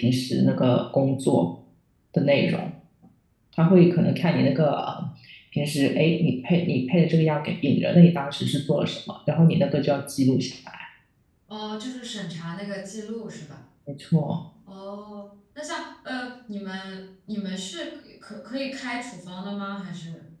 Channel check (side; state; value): both; identical; correlation 1.00